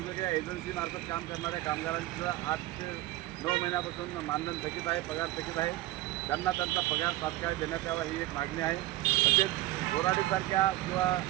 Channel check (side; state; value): left; quieter; 17.2 dB